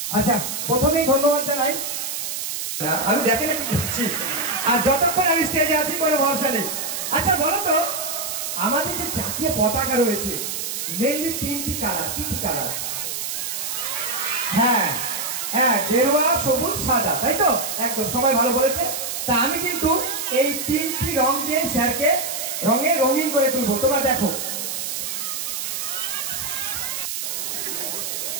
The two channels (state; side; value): noise; right; hiss, 4 dB below the sound